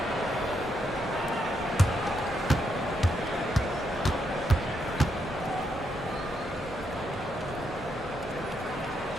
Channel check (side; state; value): both; normal; correlation 0.79